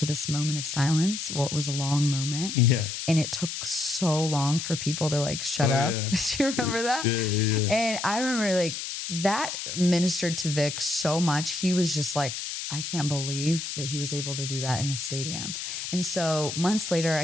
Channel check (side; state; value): left; noise; hiss, 5 dB below the sound